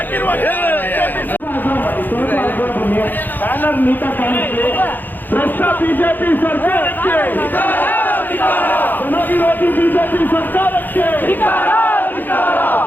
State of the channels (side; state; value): right; late; 0.088 ms